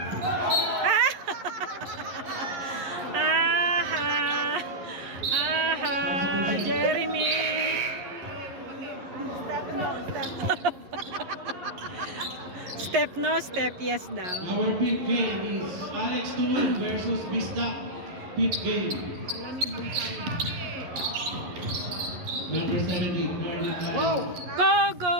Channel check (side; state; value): left; late; 11 ms